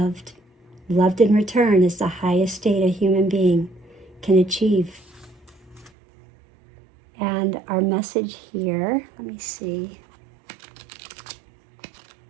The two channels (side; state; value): left; drops out; at 5.9 s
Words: loved in return, is the highest state a human being can achieve. And our message here, let me see.